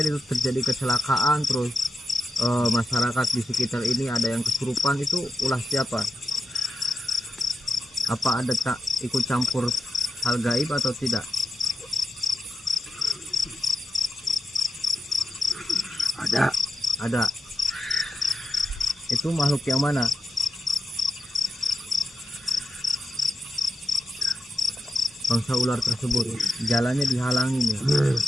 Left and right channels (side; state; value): both; normal; correlation 0.89